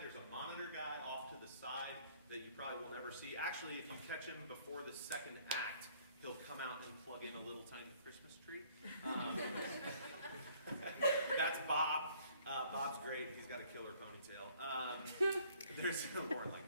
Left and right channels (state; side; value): inverted; both; correlation -0.60